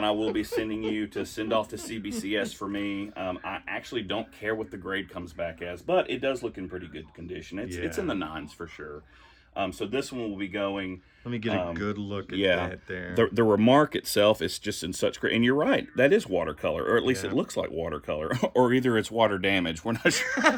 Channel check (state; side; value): identical; both; correlation 1.00